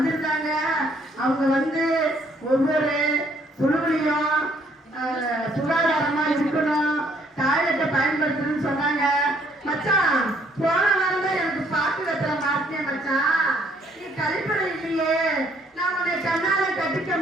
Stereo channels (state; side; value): normal; both; correlation 0.65